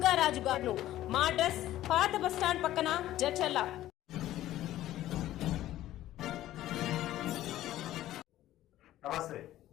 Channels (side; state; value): right; quieter; 14.1 dB